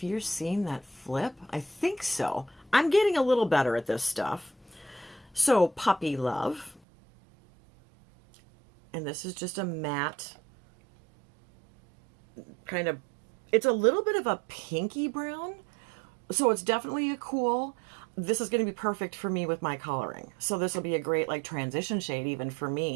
you're seeing that flip. I think so. I'm getting a little better at this stuff. So Puppy Love. And this is just a matte kind of, it's a little bit of a pinky brown. So it's definitely a cool. This is going to be perfect for me with my coloring. So this will be a great like transition shade even for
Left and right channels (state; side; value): drops out; left; at 6.8 s